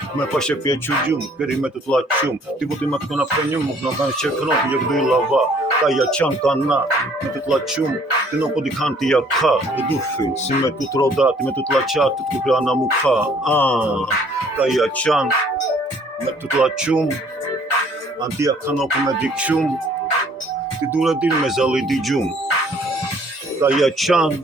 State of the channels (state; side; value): normal; both; correlation 0.59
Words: me pashe pje qurgjum, këri me të t'laq qum, ti buti me të këna fënjum, nuk në kanë qekron, ti jek duj lava, ka ja qanë kana, me të t'laq qum, ti no po di kanë ti ja ka, të dufin, si me të t'rodat, me të t'laqat, të t'kupra na mu ka, ka ja qanë, me të t'laq qum, antia kanë ku me dik qum, ti dure din me zali di gjum, ka ja qanë,